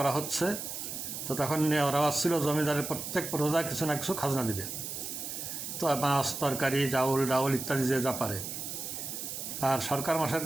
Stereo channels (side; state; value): right; noise; hiss, 6 dB below the sound